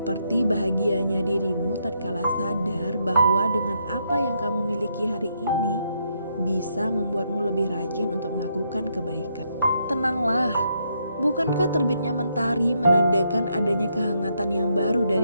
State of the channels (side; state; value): both; inverted; correlation -0.77